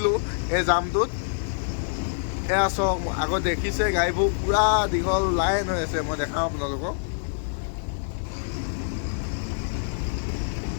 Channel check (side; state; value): right; silent; digital silence